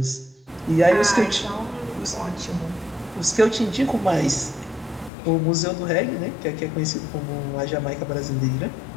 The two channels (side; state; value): right; drops out; at 5.1 s